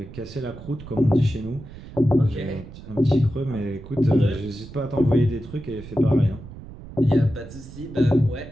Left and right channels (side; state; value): right; noise; rumble, 15 dB below the sound